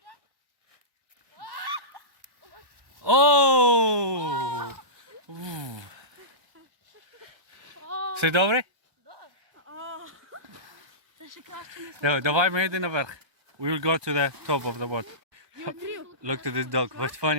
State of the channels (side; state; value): left; late; 1.2 ms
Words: Oh! Все добре? Давай ми йдемо наверх. We will go to the top of the boat. Look to this dog. What's